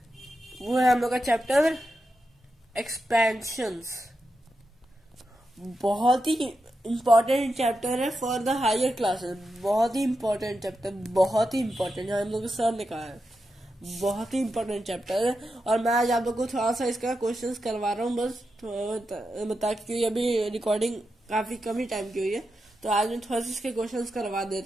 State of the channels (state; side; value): normal; both; correlation 0.88